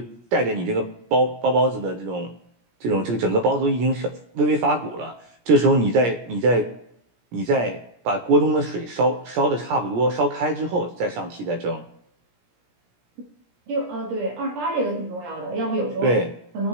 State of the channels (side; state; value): left; late; 17 ms